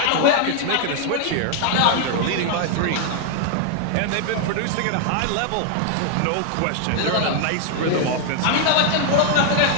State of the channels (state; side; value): different; both; correlation 0.00